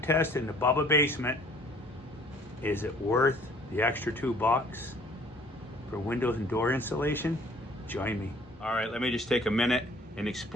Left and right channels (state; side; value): normal; both; correlation 0.56